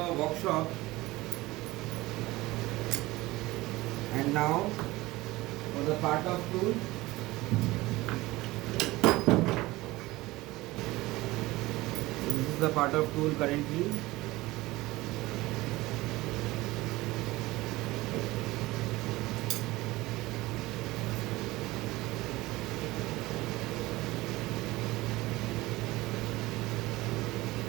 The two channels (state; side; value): quieter; left; 19.4 dB